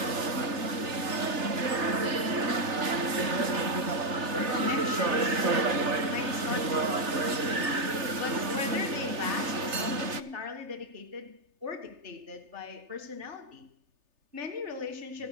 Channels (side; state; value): left; late; 3.3 ms